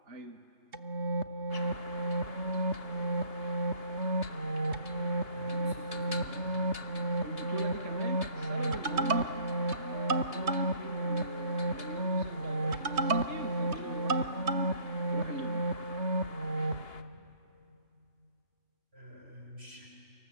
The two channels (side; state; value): left; late; 2.8 ms